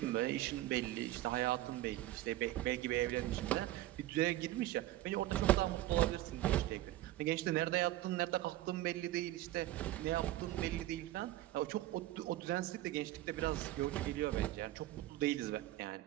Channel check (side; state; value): left; quieter; 15.3 dB